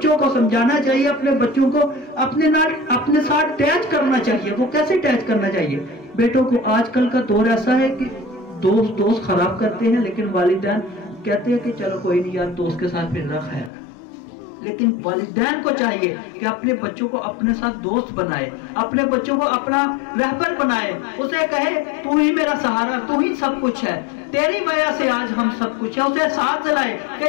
کو سمجھانا چاہیے, اپنے بچوں کو اپنے ساتھ ٹیچ کرنا چاہیے. وہ کیسے ٹیچ کرنا چاہیے؟ بیٹوں کو آج کل کا دور ایسا ہے کہ دوست خراب کرتے ہیں, لیکن والدین کہتے ہیں کہ چلو کوئی نہیں یار دوست کے ساتھ پھر رکھ ہے. لیکن والدین کو چاہیے کہ اپنے بچوں کو اپنے ساتھ دوست بنائے, اپنے بچوں کو اپنا رہبر بنائے, اسے کہے تو ہی میرا سہارا, تو ہی سب کچھ ہے, تیری وجہ سے آج ہم سب کچھ ہے. اسے ساتھ دلائے کہ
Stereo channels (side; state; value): right; drops out; at 13.7 s